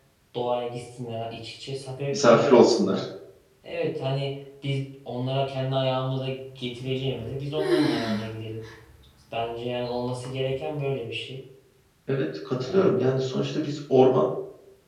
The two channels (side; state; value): both; identical; correlation 1.00